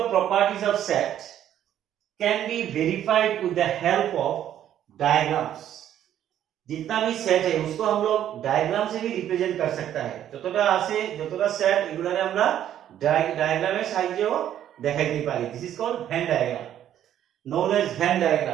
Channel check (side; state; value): left; quieter; 10.9 dB